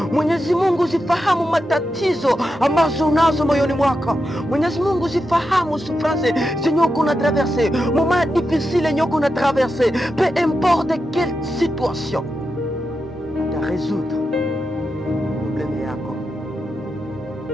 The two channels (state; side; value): normal; both; correlation 0.87